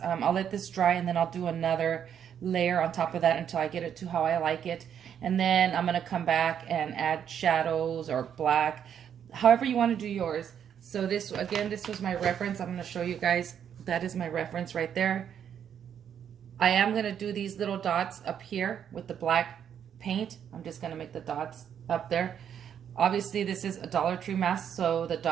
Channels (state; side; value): quieter; left; 8.7 dB